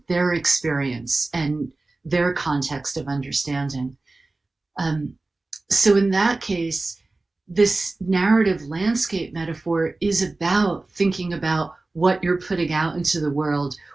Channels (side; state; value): left; quieter; 3.2 dB